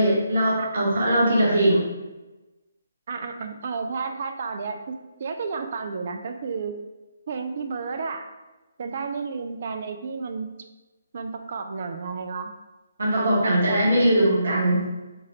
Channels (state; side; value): inverted; both; correlation -0.80